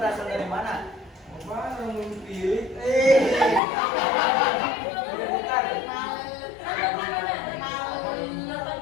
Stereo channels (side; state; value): right; drops out; at 3.6 s